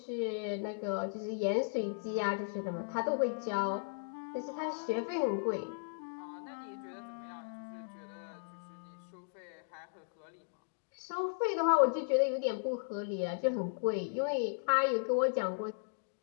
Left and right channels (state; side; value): silent; right; digital silence